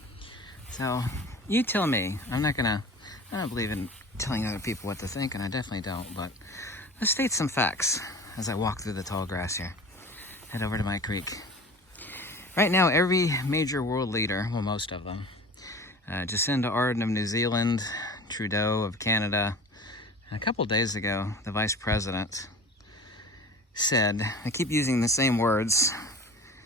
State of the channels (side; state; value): both; normal; correlation 0.39